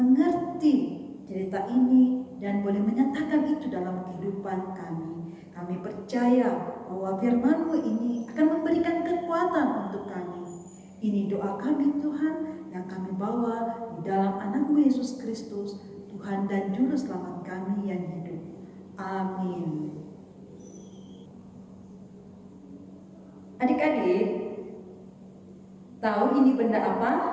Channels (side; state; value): both; identical; correlation 1.00